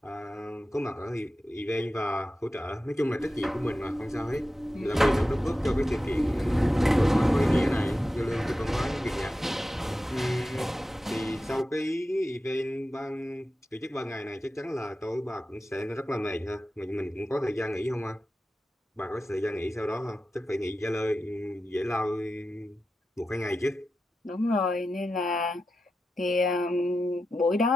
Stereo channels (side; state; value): both; normal; correlation 0.91